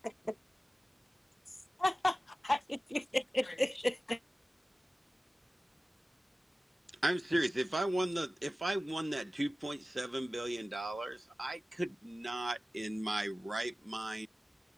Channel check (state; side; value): normal; both; correlation 0.96